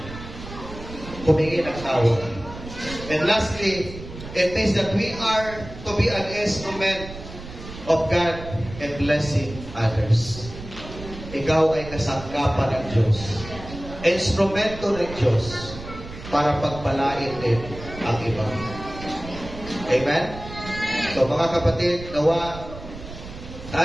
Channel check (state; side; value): noise; right; rumble, 13 dB below the sound